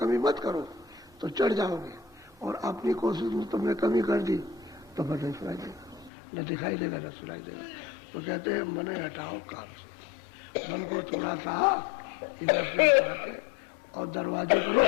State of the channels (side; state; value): right; drops out; at 6.1 s